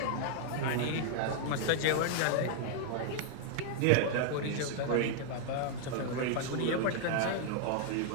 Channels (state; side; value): different; both; correlation 0.00